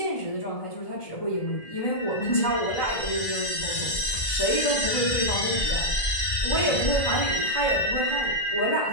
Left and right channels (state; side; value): late; right; 1.7 ms